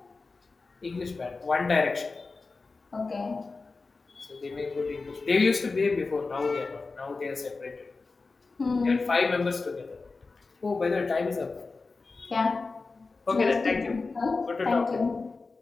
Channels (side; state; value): right; quieter; 4.0 dB